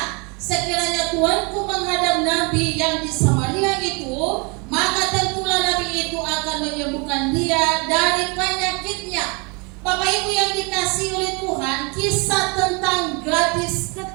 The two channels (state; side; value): quieter; left; 31.1 dB